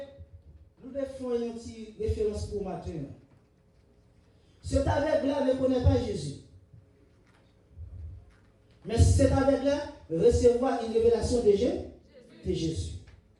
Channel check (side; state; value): both; identical; correlation 1.00